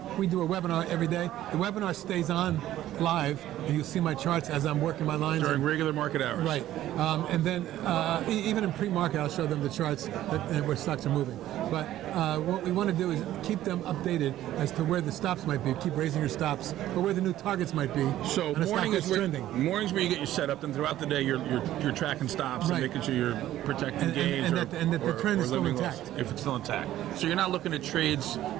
we do a webinar every day, the webinar stays on live, and you'll see my charts as I'm working my lines. During regular market hours. Right. And then even in pre-market, I'll show them the charts where stocks are moving. But what we want to do is keep them updated as to where the stops might be, keep raising your stops, or where the new targets might be. So mornings where you get your setup, and throughout the day you're tracking stops and making sure you're protecting gains and that the trend is still intact. If it's still intact. So you're not looking at trades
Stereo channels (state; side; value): quieter; left; 13.5 dB